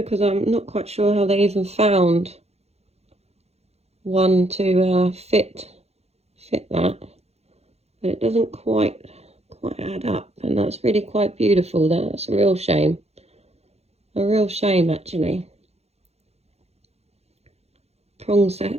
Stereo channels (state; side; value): late; left; 0.31 ms